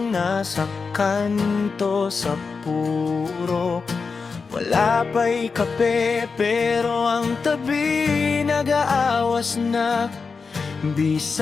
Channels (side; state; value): right; quieter; 4.9 dB